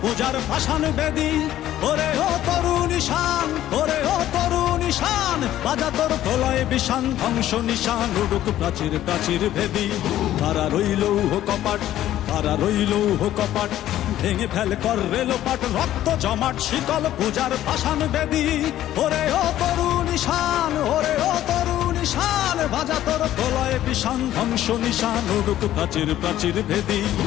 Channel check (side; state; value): right; quieter; 13.0 dB